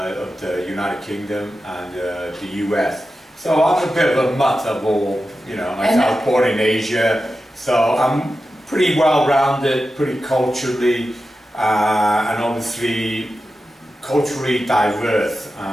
the United Kingdom and the US. So I'm a bit of a mutt of all, you know, like I was born in Asia, so I'm pretty well-rounded, pretty culturally, and obviously culturally diverse.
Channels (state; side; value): normal; both; correlation 0.92